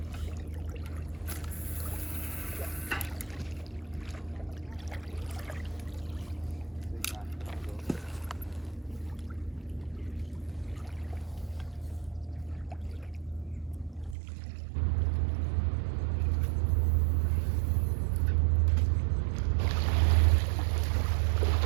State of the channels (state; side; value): drops out; left; at 14.2 s